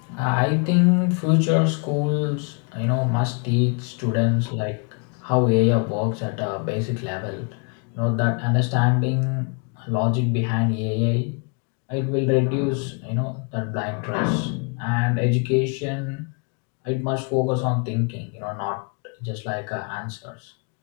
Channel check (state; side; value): quieter; right; 36.9 dB